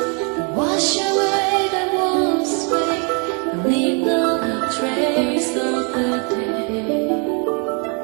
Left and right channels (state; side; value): quieter; left; 37.0 dB